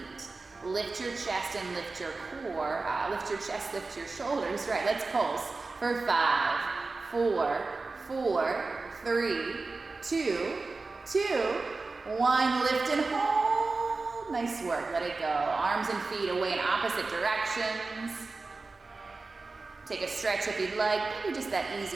Lift your chest and lift your core. Lift your chest, lift your shoulders. Right, let's pulse for 5, 4, 4, 3, 2, 2, 1. Lift and hold. Nice work. Let it go. Arms and feet away in opposite directions. Take a stretch if you'd like. Maybe just that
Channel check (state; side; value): quieter; left; 3.8 dB